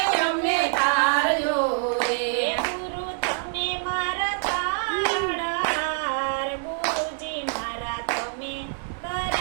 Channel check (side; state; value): left; silent; 61 dB below the other